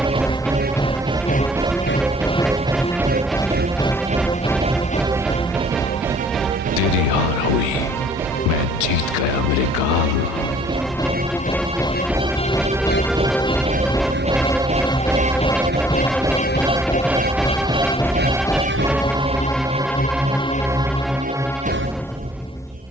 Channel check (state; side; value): normal; both; correlation 0.57